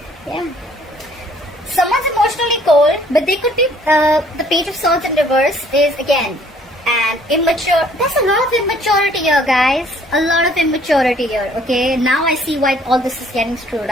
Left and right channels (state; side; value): normal; both; correlation 0.59